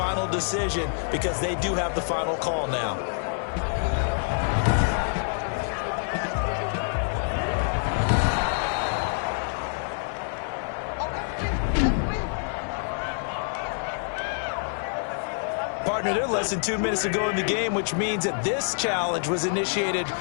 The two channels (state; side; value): silent; right; 60 dB below the other